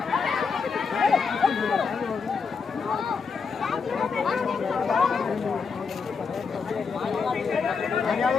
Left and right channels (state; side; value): quieter; right; 5.4 dB